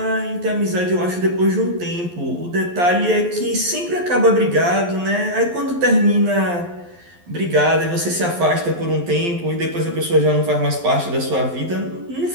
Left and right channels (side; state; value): left; late; 11 ms